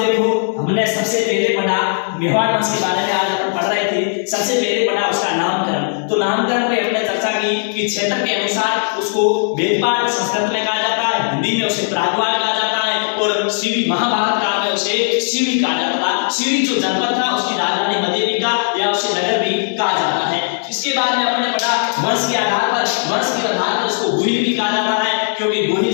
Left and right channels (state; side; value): silent; right; digital silence